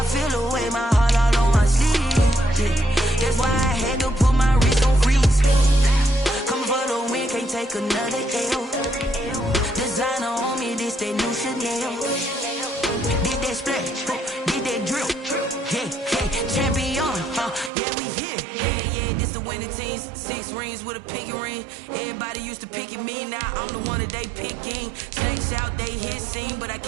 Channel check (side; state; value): left; drops out; at 17.7 s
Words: feel away my heart all on my sleeve. Yeah, that's why I had to put my wrist on freeze. Coming for the win, can't take another L. Designer on me, this that new Chanel. Did that splash, did that drill. Yeah, champion, yeah, we here. Yeah, this the winning team. 6 rings with a pinky ring. Everybody used to pick at me, now I'm the one that they picking. Snakes out, they hit scene, but I